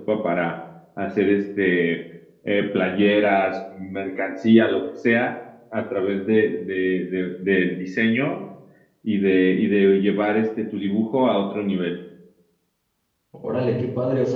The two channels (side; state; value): both; identical; correlation 1.00